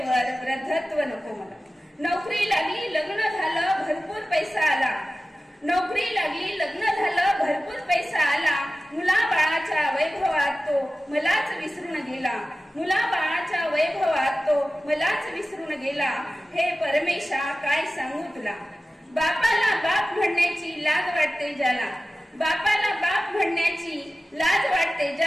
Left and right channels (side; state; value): both; normal; correlation 0.95